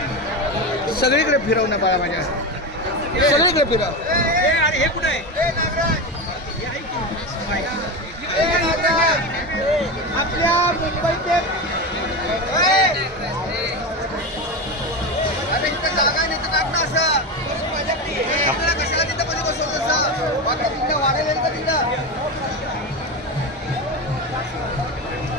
सगळीकडे फिरव ना बाळा माझ्या सगळीकडे फिरव हे कुठे आहे आपल्या मुंबईचे जागा नाही तर टाक ना असं कशाला तिथं मध्ये बसवलं असं तिथं वाढेल का तिथं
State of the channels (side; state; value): both; normal; correlation 0.20